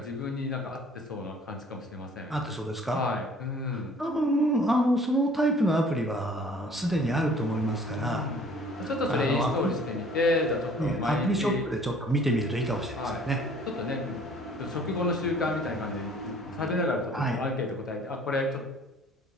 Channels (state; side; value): normal; both; correlation 0.53